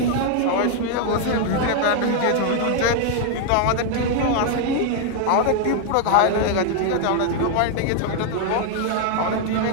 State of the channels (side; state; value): both; different; correlation 0.00